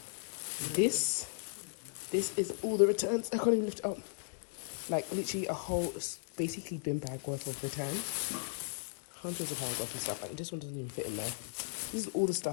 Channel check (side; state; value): right; silent; digital silence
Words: this is all the returns. I can't even lift it up. Like literally a whole basically bin bag worth of returns. Hundreds of pounds worth of stuff. Like this one doesn't even fit in there. This is all the